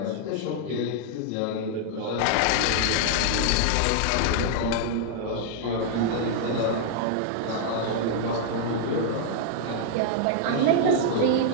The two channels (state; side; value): different; both; correlation -0.01